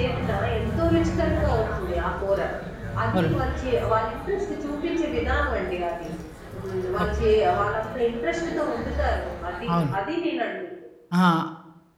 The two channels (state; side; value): identical; both; correlation 1.00